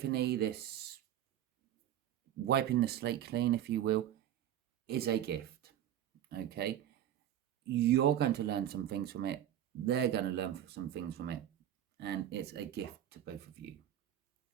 this wiping the slate clean, if you will, is a gift. Okay, you're going to learn some things from it. They're going to learn some things from it. And it's a gift to both of you.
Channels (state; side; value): quieter; left; 11.3 dB